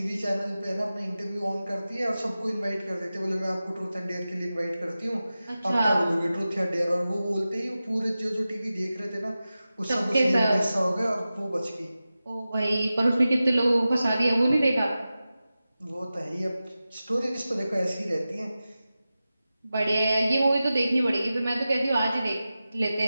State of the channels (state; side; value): inverted; both; correlation -0.94